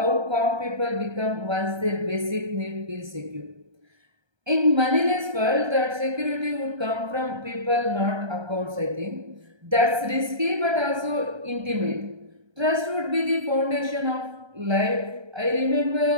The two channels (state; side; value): late; left; 1.3 ms